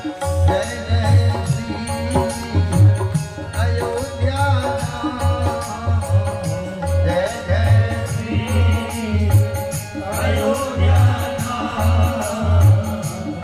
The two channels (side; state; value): both; identical; correlation 1.00